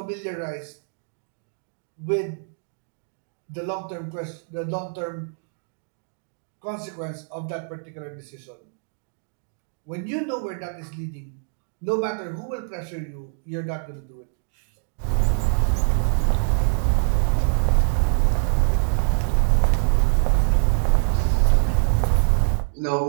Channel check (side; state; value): left; silent; digital silence